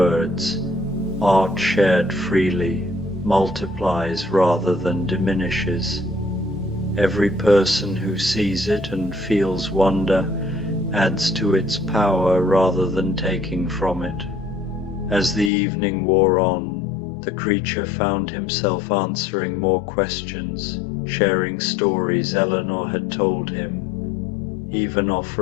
"Art shared freely multiplies rather than diminishes. Every person who sees it and feels wonder adds to its power rather than taking from it." As the evening wore on, the creature found himself answering more questions, sharing stories Eleanor had told him, even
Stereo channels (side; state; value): right; drops out; at 15.5 s